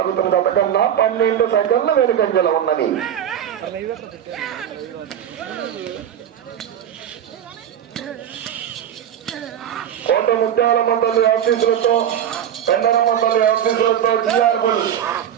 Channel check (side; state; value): left; quieter; 9.8 dB